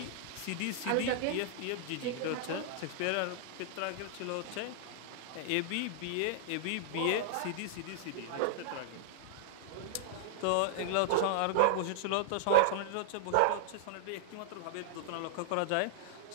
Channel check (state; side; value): different; both; correlation -0.01